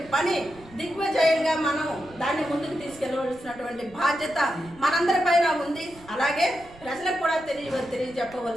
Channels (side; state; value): right; noise; rumble, 22 dB below the sound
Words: పని దిగ్విజయంగా మనం దాన్ని ముందుకు తీసుకెళ్ళవలసినటువంటి బాధ్యత మనందరి పైన ఉంది. అలాగే ప్రజలకు కూడా